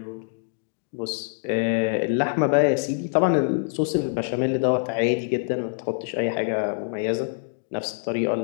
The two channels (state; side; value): silent; right; digital silence